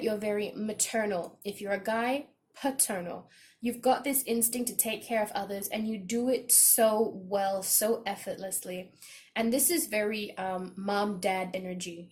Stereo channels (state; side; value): identical; both; correlation 1.00